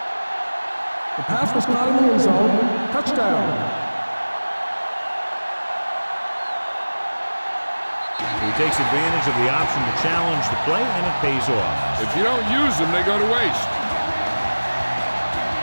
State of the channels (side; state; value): both; inverted; correlation -1.00